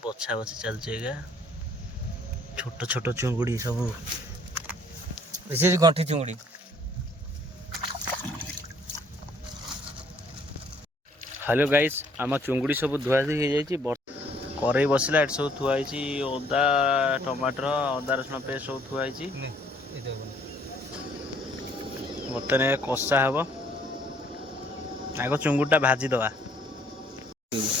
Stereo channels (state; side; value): normal; both; correlation 0.62